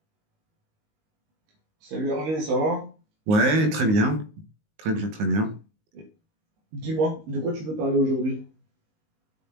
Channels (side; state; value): left; late; 19 ms